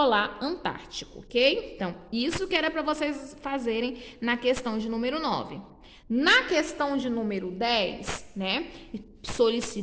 Antártico, ok? Então, isso que era para vocês fazerem na questão de número 9. Na questão de número 10, né,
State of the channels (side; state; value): both; identical; correlation 1.00